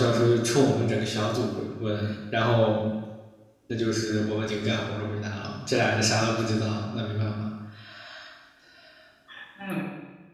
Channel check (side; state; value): both; identical; correlation 1.00